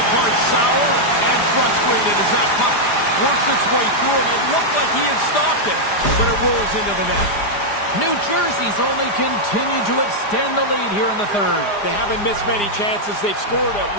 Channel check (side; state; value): right; late; 4.9 ms